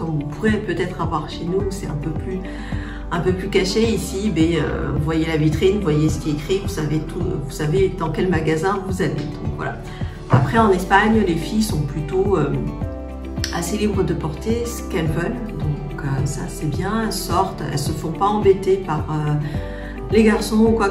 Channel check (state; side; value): identical; both; correlation 1.00